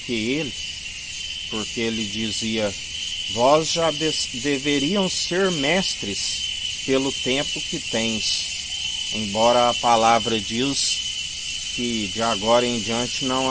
ele, porque ele dizia: vós já deveriam ser mestres pelo tempo que tens, embora a palavra diz que de agora em diante não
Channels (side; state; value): both; identical; correlation 1.00